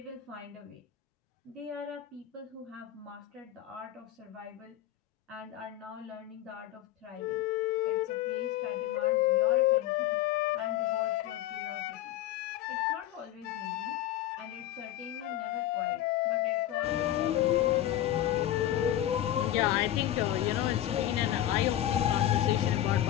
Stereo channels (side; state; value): right; quieter; 12.8 dB